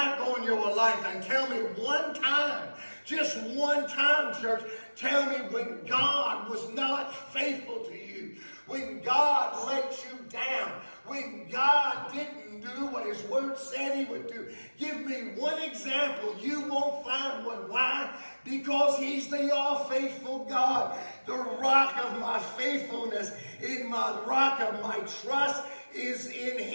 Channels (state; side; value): inverted; both; correlation -1.00